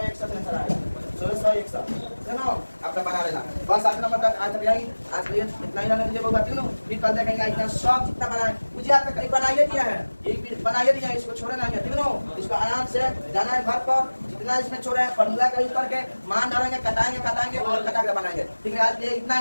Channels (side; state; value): both; inverted; correlation -1.00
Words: आंसर आएगा, 1661, है ना। आपका बना लेना बस। 8 नंबर तक आज यही, आज के लिए इतना ही रहने दीजिए, बहुत बात नहीं, फिर कल देखेंगे इतना सब जितना बनाए मुझे आपका कहीं बनाइए दिया है, एक भी बनाइए दिया है, इसको छोड़ना नहीं है, ठीक है ना। इसको आराम से जाना है घर पर, जितना इसमें छोड़ा है फॉर्मूला का यूज करके मान डालेंगे, कटाएंगे और कटा के बनाएंगे, ठीक है। आज के लिए इतना